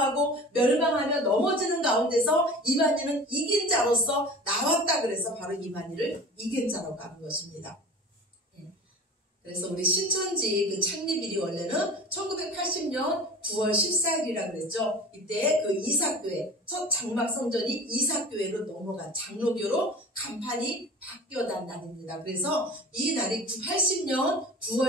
멸망하며 넘어지는 가운데서 이만희는 이긴 자로서 나왔다. 그래서 바로 이만희를 이긴 자라고 하는 것입니다. 그래서 우리 신천지 그 창립일이 원래는 1980년 9월 14일이라 그랬죠. 이때 그 이사교회, 첫 장막 성전이 이사교회로 넘어간 장로교로 간판이 바뀌어난 날입니다. 그래서 이 날이 80년 9월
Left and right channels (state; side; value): normal; both; correlation 0.38